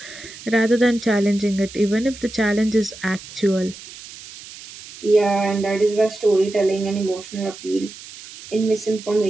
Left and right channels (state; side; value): noise; right; hiss, 16 dB below the sound